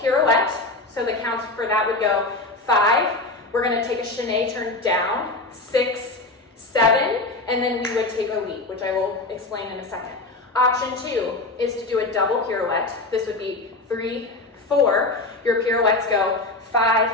So the counts for that would go 5. We're gonna take a chaîné turn down, 6, 7, and then we would take a leap, which I will explain in a second. Option 2 is to do a double pirouette. This would be 3, 4. Your pirouettes go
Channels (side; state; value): right; quieter; 3.1 dB